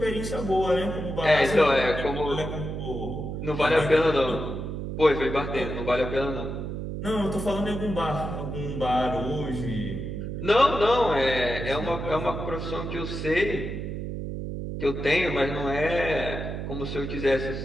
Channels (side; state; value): right; noise; hum, 5 dB below the sound